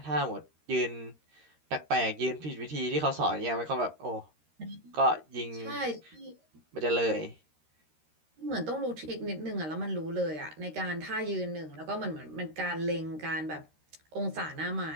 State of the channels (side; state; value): left; late; 13 ms